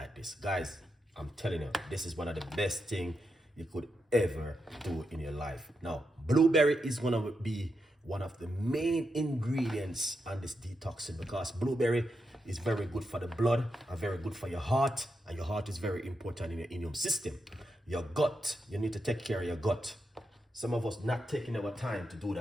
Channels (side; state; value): both; normal; correlation 0.85